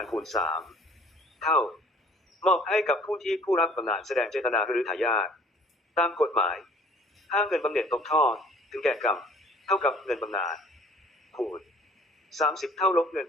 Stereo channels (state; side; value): normal; both; correlation 0.53